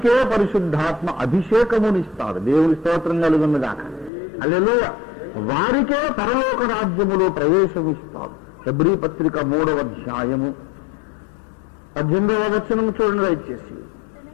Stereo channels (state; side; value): drops out; right; at 4.1 s